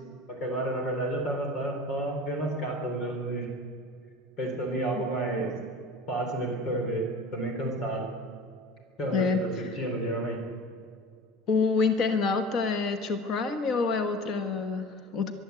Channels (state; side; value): normal; both; correlation 0.37